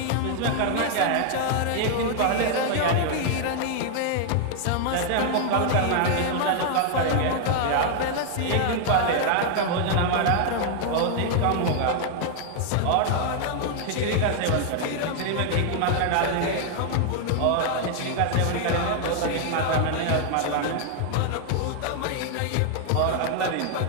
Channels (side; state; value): both; different; correlation 0.00